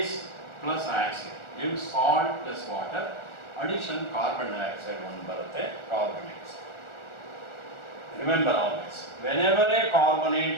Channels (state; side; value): late; right; 1.4 ms